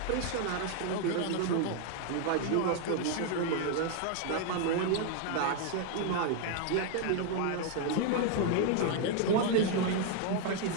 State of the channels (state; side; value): different; both; correlation 0.00